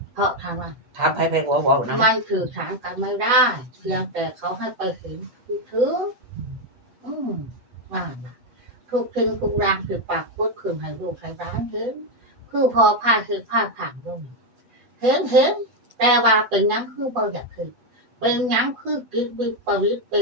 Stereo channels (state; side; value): late; left; 8.0 ms